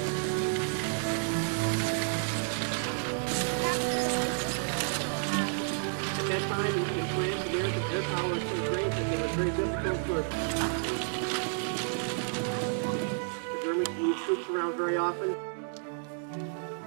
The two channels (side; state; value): left; silent; 57 dB below the other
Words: In France, their power was so great that they were very difficult for the Germans to move troops around very often.